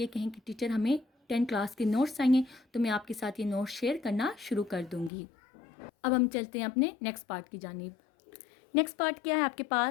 कहें कि टीचर हमें 10 क्लास के नोट्स चाहिए, तो मैं आपके साथ ये नोट्स शेयर करना शुरू कर दूँगी। अब हम चलते हैं अपने नेक्स्ट पार्ट की जानिब। नेक्स्ट पार्ट क्या है आपके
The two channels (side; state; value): right; drops out; at 5.1 s